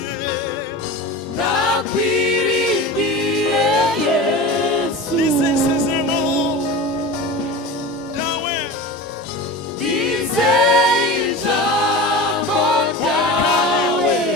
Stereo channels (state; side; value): normal; both; correlation 0.31